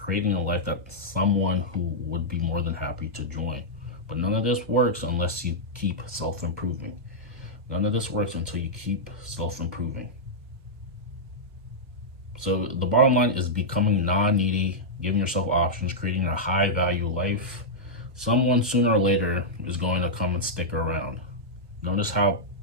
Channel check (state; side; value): normal; both; correlation -0.08